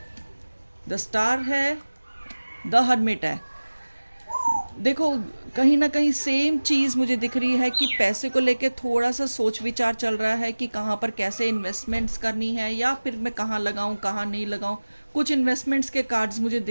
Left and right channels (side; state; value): both; inverted; correlation -1.00